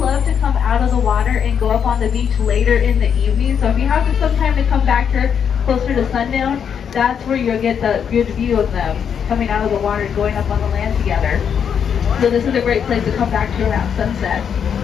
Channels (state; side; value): quieter; right; 7.7 dB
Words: to come out of the water and go up on the beach later in the evening, so if you have some time to come back here closer to sundown, that's where you'll get the good view of them coming out of the water and going up on the land together. So this is a great place to come back to around sunset.